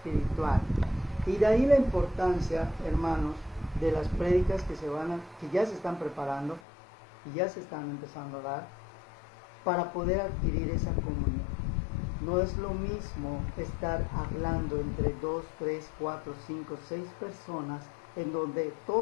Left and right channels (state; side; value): drops out; right; at 6.6 s